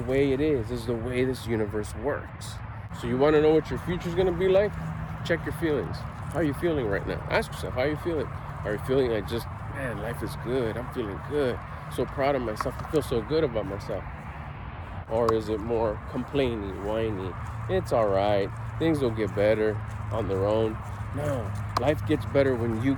it is. It's the way this universe works. So you want to know what your future's going to be like? Check your feelings. How are you feeling right now? Ask yourself, how are you feeling? Are you feeling like just, man, life is good. I'm feeling good. So proud of myself. I feel so good about myself. Or is it more complaining, whiny? It's all right. Things will get better on their own. No, life gets better when you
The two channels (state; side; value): identical; both; correlation 1.00